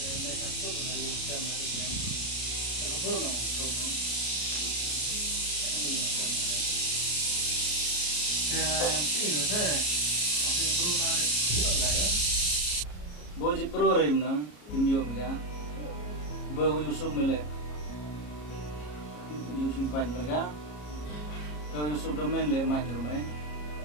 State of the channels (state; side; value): late; right; 33 ms